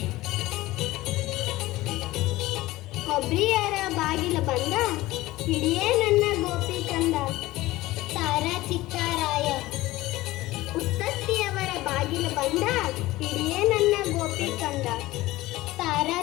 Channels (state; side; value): quieter; right; 18.0 dB